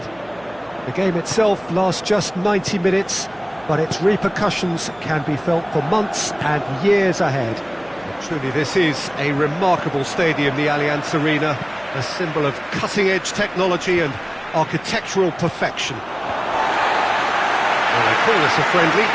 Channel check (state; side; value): noise; right; hum, 27 dB below the sound